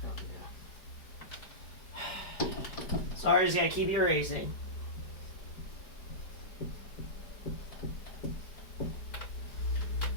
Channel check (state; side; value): late; right; 4.8 ms